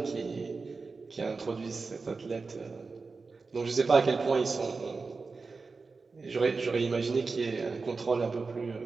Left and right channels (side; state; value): left; quieter; 4.3 dB